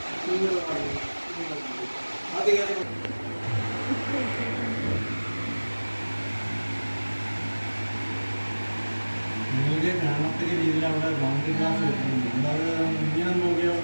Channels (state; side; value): inverted; both; correlation -1.00